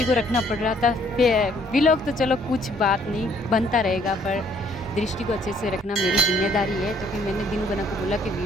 को रखना पड़ रहा था। व्लॉग तो चलो कुछ बात नहीं, बनता रहेगा, पर दृष्टि को अच्छे से रखना मेरी जिम्मेदारी है। तो फिर मैंने दिनू बना को बोला कि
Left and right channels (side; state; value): both; normal; correlation 0.63